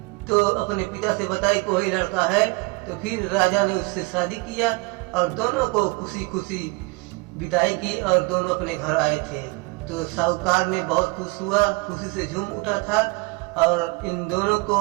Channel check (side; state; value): left; quieter; 25.6 dB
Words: तो अपने पिता से बताई कि वही लड़का है। तो फिर राजा ने उससे शादी किया और दोनों को खुशी खुशी विदाई की और दोनों अपने घर आए थे। तो साहूकार ने बहुत खुश हुआ, खुशी से झूम उठा था और इन दोनों को